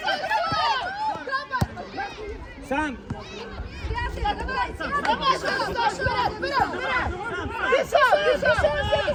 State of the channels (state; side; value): identical; both; correlation 1.00